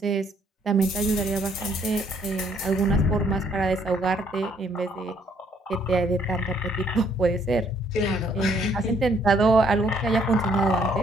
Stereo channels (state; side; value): normal; both; correlation 0.67